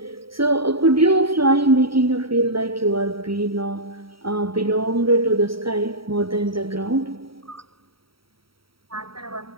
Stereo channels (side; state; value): left; late; 0.75 ms